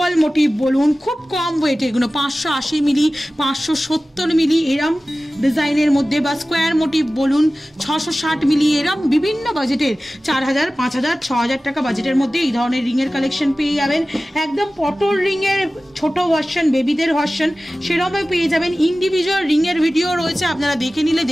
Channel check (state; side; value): normal; both; correlation 0.96